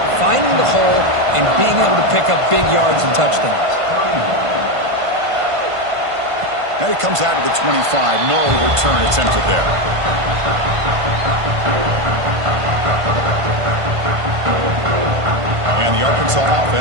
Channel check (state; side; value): late; left; 1.5 ms